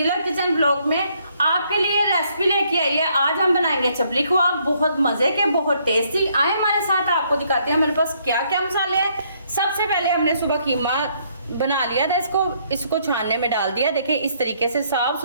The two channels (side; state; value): both; inverted; correlation -0.69